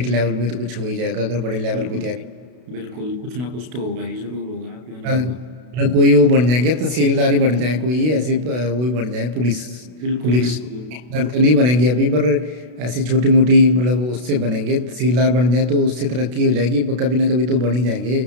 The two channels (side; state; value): left; late; 32 ms